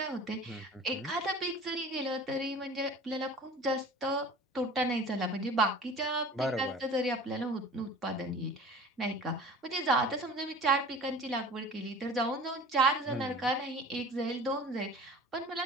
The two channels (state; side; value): normal; both; correlation 0.42